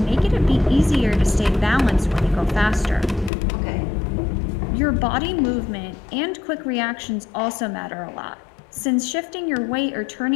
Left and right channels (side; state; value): right; drops out; at 3.3 s